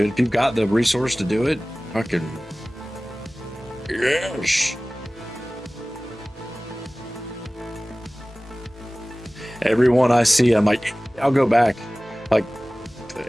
If you've got the resource to do it, fucking yes. Everyone I see, I'm like, I'll go back. Like,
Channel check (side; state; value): both; normal; correlation 0.98